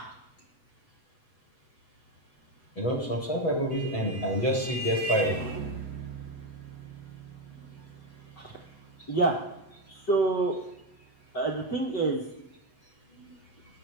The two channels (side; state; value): right; late; 7.9 ms